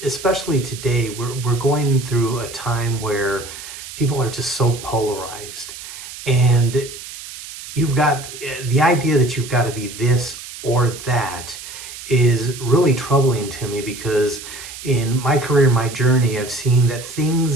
especially today, we're going through a time where people are just so polarized. And you've got the idea that you've got to be this or that is really troubling to me because in my career, my journey, I've seen that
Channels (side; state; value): right; noise; hiss, 13 dB below the sound